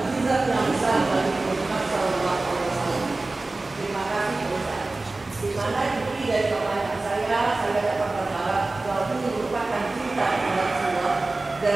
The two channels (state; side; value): quieter; left; 3.2 dB